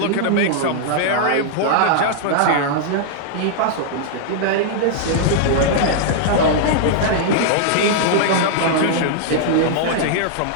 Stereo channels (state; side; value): different; both; correlation -0.01